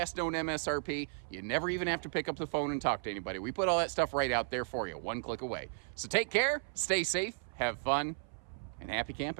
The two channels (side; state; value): left; silent; 55 dB below the other